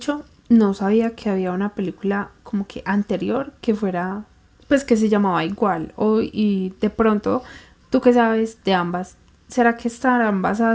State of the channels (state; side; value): identical; both; correlation 1.00